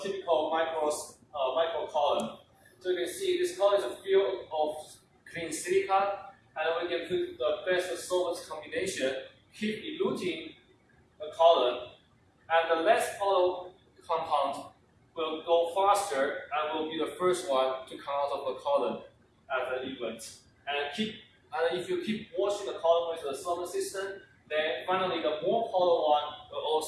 typical micro column. So you can see this column is a field of clean silica, and we can put the best solvent combination, keep eluting the column, and the less polar compound will go faster and will be the first one to come out of the column at the event. And if you keep washing the column with the solvent system, then finally the more polar one will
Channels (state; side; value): identical; both; correlation 1.00